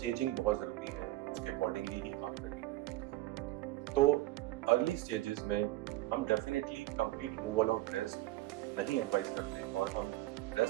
बहुत ज़रूरी है, उसके अकॉर्डिंगली ही आपका ट्रीटमेंट होता है। तो अर्ली स्टेजेस में हम definitely complete removal of breast नहीं एडवाइस करते और हम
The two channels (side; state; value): left; quieter; 17.1 dB